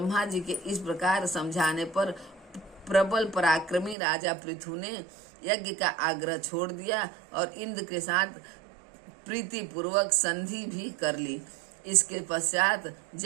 जी के इस प्रकार समझाने पर प्रबल पराक्रमी राजा पृथु ने यज्ञ का आग्रह छोड़ दिया और इंद्र के साथ प्रीति पूर्वक संधि भी कर ली। इसके पश्चात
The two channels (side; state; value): left; drops out; at 4.0 s